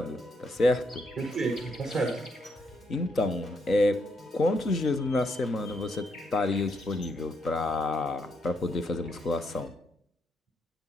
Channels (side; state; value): both; normal; correlation 0.76